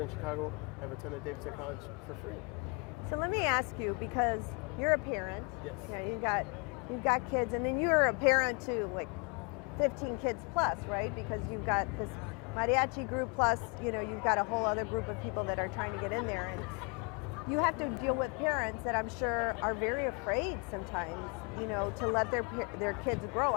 Chicago, have attended Davidson College for free. So let me ask you, because you're a parent. Yes. You've got kids, and then you're a parent to like 15 kids plus, right? Because you've got this mariachi group plus, you've got a whole other group of people that are trying to get in there. And you have to deal with parents that I'm sure are very afraid sometimes, to let their kids grow.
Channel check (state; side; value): quieter; right; 32.2 dB